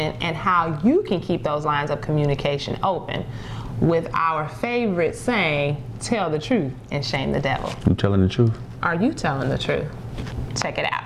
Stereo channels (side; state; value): both; identical; correlation 1.00